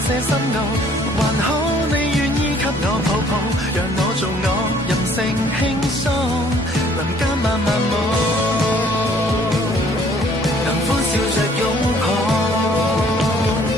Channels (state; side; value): noise; right; rumble, 20 dB below the sound